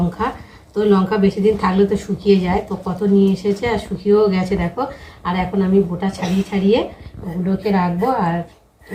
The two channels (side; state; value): both; identical; correlation 1.00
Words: তো লঙ্কা বেশি দিন থাকলে তো শুকিয়ে যায়, তো কত নিয়ে এসেছে আর শুকিয়েও গেছে দেখো। আর এখন আমি বোটা ছাড়িয়ে ছাড়িয়ে ওগুলোকে রাখবো। আর